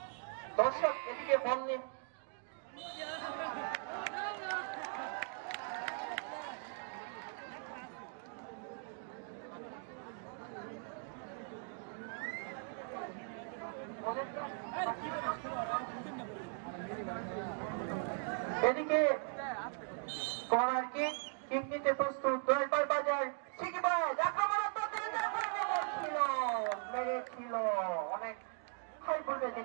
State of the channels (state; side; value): silent; left; 52 dB below the other